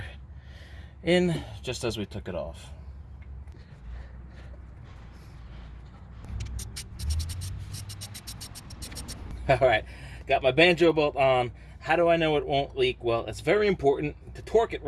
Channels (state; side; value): identical; both; correlation 1.00